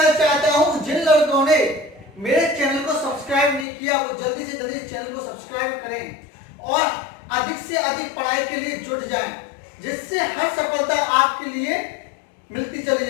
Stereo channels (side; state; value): right; drops out; at 3.7 s